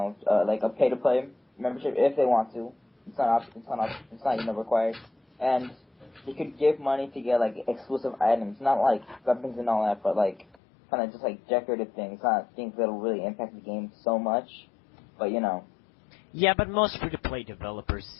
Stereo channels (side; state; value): right; drops out; at 10.6 s